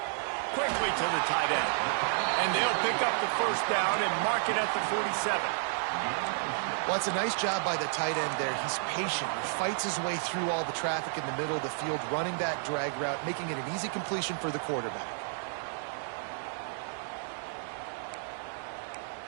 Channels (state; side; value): silent; left; digital silence